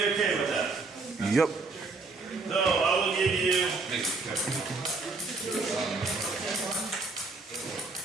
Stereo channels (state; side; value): quieter; left; 3.8 dB